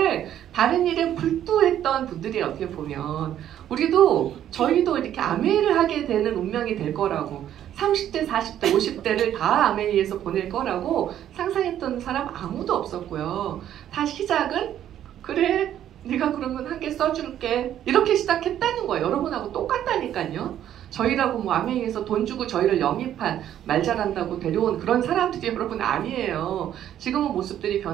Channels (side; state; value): left; quieter; 11.0 dB